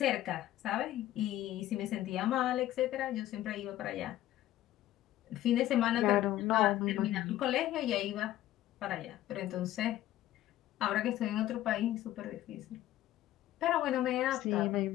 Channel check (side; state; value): right; quieter; 14.0 dB